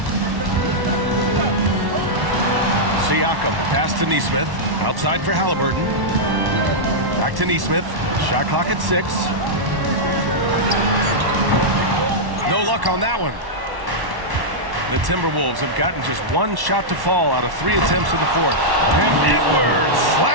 Siakam, the pass to Nesmith. Outside for Halliburton. Back to Nesmith. Shot clock at 6. No luck on that one. The Timberwolves have gotten just 1 shot to fall out of 3 attempts in the 4th. And Edwards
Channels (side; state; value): left; late; 1.1 ms